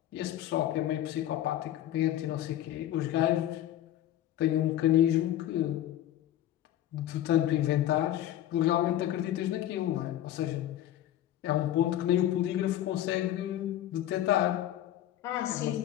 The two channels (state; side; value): quieter; right; 12.6 dB